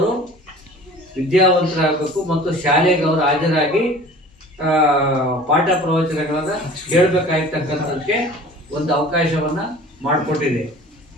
ವಿದ್ಯಾವಂತರಾಗಬೇಕು ಮತ್ತು ಶಾಲೆಗೆ ಅವರು ಹಾಜರಾಗಿ ಪಾಠ ಪ್ರವಚನಗಳನ್ನು ಕೇಳಬೇಕಾಗಿರ್ತಕ್ಕಂಥದ್ದಕ್ಕೆ ಒಂದು ಅವಕಾಶವನ್ನು ಮಾಡಿಕೊಟ್ಟಿದೆ.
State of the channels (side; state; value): both; normal; correlation 0.44